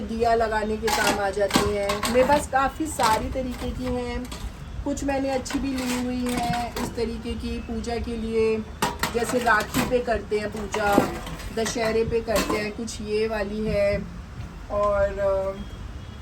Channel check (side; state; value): both; identical; correlation 1.00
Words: दिया लगाने के काम आ जाती हैं। मेरे पास काफ़ी सारी तरीके की हैं, कुछ मैंने अच्छी भी ली हुई हैं इस तरीके की पूजा के लिए। जैसे राखी पे करते हैं पूजा, दशहरे पे करते हैं, कुछ ये वाली है, और